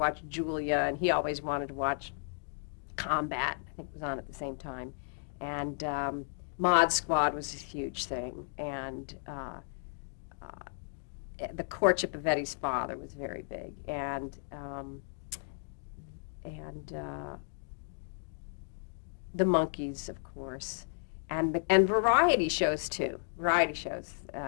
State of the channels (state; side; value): silent; right; digital silence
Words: Julia, and he always wanted to watch Combat. I think it was on at the same time. And Mod Squad was a huge thing, and the courtship of Eddie's father was very big, and the Monkees, of course, and variety shows too. Variety shows,